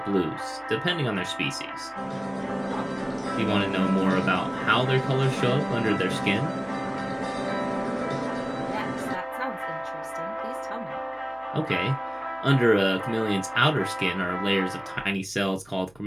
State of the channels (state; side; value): noise; right; hum, 29 dB below the sound